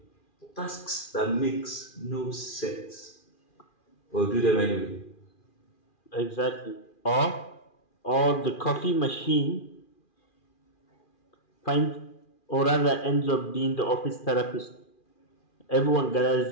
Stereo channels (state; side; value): late; right; 2.4 ms